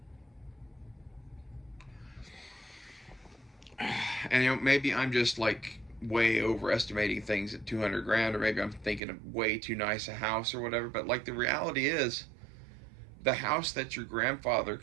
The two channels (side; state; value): left; drops out; at 9.0 s